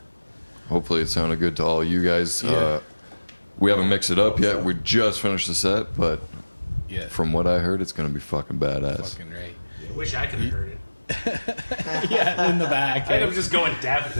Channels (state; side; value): inverted; both; correlation -1.00